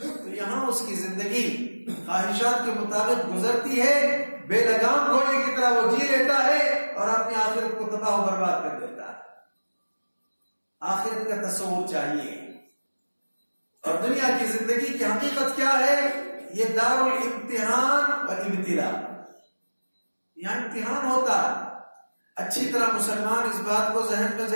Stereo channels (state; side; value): inverted; both; correlation -1.00